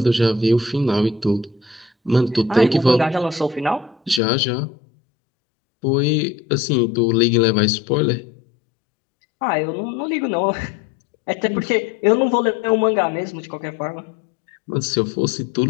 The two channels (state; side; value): drops out; right; at 4.2 s